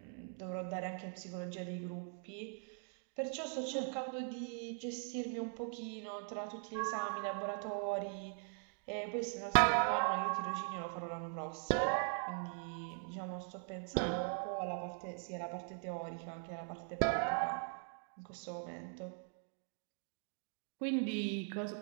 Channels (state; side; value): silent; left; 50 dB below the other